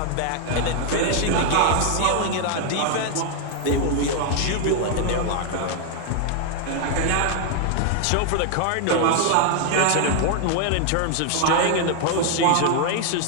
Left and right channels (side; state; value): both; different; correlation 0.00